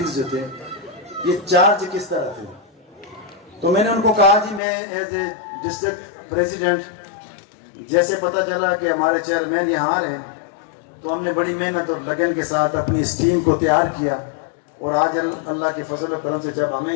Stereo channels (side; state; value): right; drops out; at 4.6 s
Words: जो थे, ये चार्ज किस तरह थे। तो मैंने उनको कहा जी, मैं एज ए डिस्ट्रिक्ट प्रेसिडेंट, जैसे पता चला कि हमारे चेयरमैन यहाँ आ रहे हैं, तो हमने बड़ी मेहनत और लगन के साथ अपनी इस टीम को तैयार किया और आज अल्लाह के फजल करम से जब